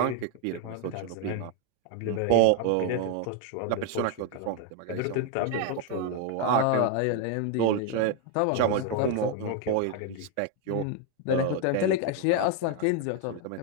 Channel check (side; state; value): both; different; correlation 0.01